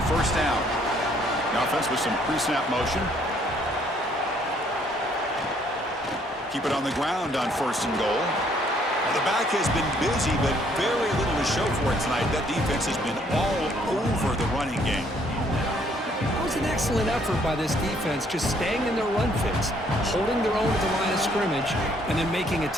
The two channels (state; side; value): normal; both; correlation 0.65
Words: first down. The offense with some pre-snap motion. Keep it on the ground on first and goal. Well, the back has been busy, but very little to show for it tonight. That defense has been all over the running game. That was an excellent effort by this defense, just staying in their run fits, holding their own at the line of scrimmage, and then making a